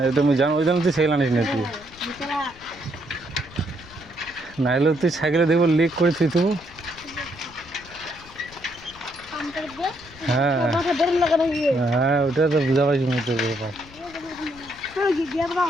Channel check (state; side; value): noise; left; rumble, 22 dB below the sound